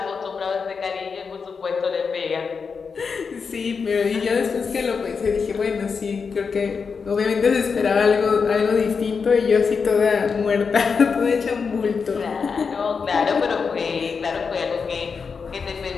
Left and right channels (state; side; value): quieter; right; 5.5 dB